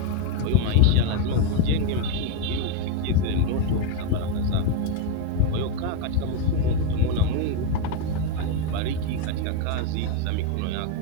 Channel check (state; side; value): different; both; correlation 0.02